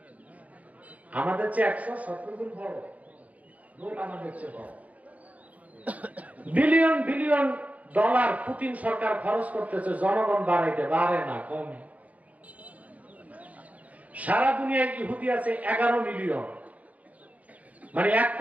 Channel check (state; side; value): late; left; 0.071 ms